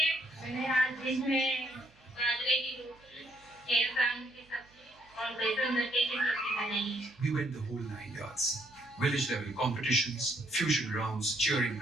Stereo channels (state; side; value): noise; right; hum, 29 dB below the sound